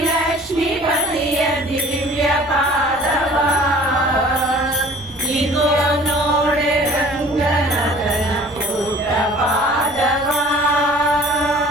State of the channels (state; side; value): noise; right; rumble, 26 dB below the sound